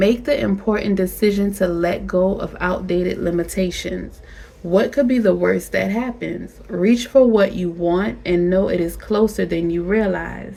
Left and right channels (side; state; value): both; identical; correlation 1.00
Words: the important decision to let go of outdated limitations. What could be the worst that happens? Reach for what you want and know it is closer than you realize.